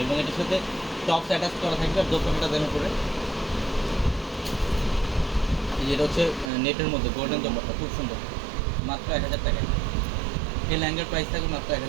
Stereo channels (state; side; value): drops out; left; at 6.5 s